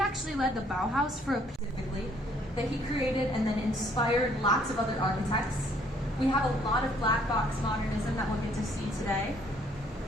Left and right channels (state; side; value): normal; both; correlation 0.64